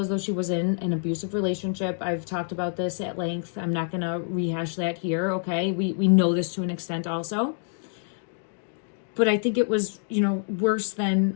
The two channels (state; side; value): silent; right; 60 dB below the other